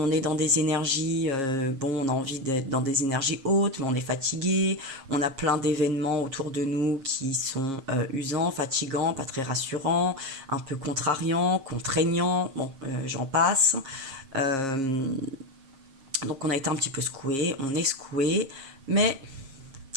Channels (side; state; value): left; late; 7.4 ms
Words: est dans des énergies, bon, on a envie d'être dans des énergies hautes, mais on est fatigué. On a plein d'événements autour de nous qui sont usants, fatigants, pas très rassurants, un peu contrariants, contraignants. Bon, j'en passe. Euh, donc on a été un petit peu secoué, on est secoué, mais